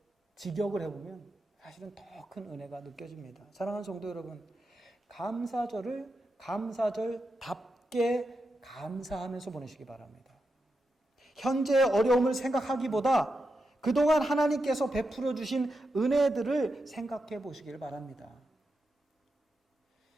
직역을 해보면 사실은 더 큰 은혜가 느껴집니다. 사랑하는 성도 여러분, 감사절을 감사절답게 감사하면서 보내시기 바랍니다. 현재의 어려움을 생각하기보다 그동안 하나님께서 베풀어 주신 은혜들을 생각해 보시길 바랍니다.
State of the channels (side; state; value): both; normal; correlation 0.87